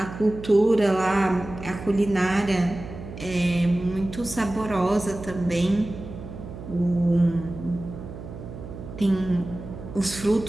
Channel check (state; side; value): noise; right; hum, 12 dB below the sound